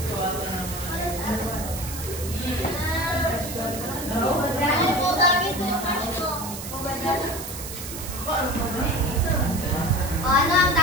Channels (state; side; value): noise; right; hiss, 9 dB below the sound